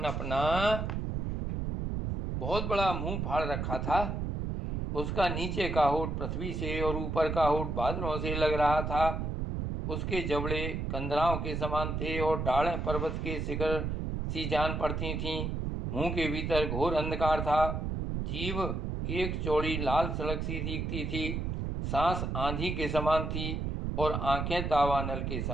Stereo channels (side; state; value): right; noise; rumble, 2 dB below the sound